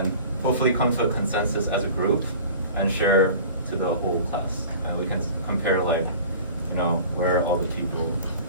hopefully come to a consensus as a group and share to the whole class, and we can compare like, you know, where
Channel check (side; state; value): both; inverted; correlation -0.41